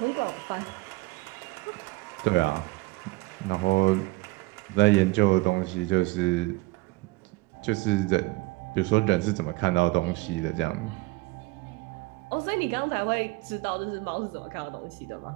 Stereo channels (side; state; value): left; quieter; 22.0 dB